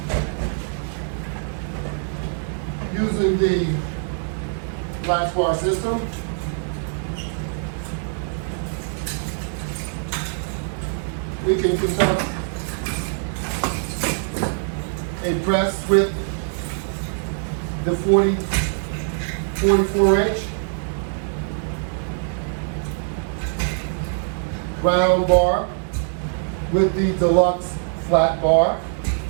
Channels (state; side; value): silent; left; digital silence